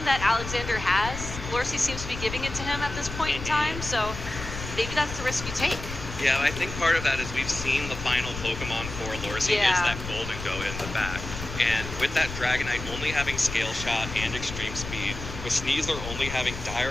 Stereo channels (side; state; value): left; noise; rumble, 8 dB below the sound